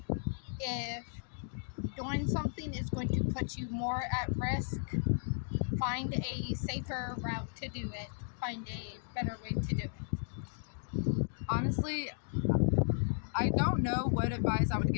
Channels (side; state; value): right; silent; digital silence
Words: If doing something is going to put you more at risk, find a safer route to do it. Find a better way to do it. Honestly, I don't know what advice I would